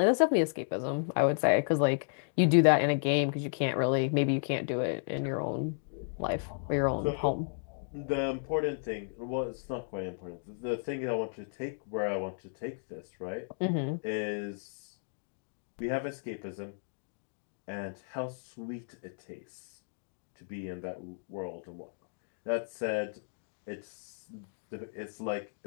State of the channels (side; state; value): right; silent; digital silence